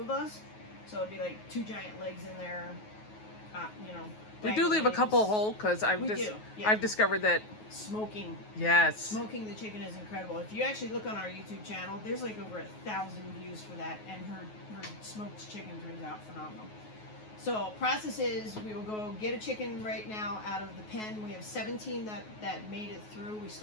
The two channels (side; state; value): right; late; 9.4 ms